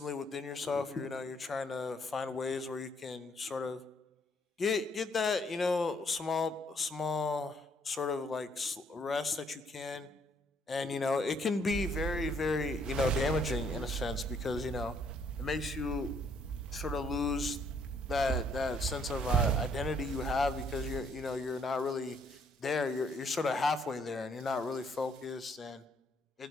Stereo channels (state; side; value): normal; both; correlation 0.68